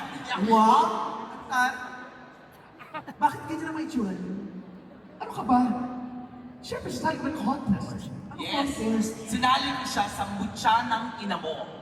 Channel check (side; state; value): both; identical; correlation 1.00